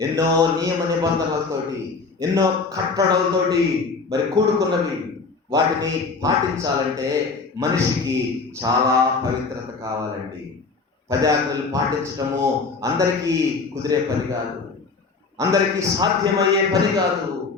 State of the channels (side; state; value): right; quieter; 4.3 dB